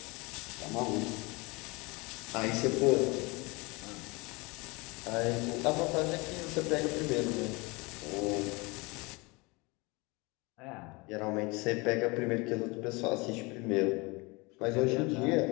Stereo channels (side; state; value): right; quieter; 26.1 dB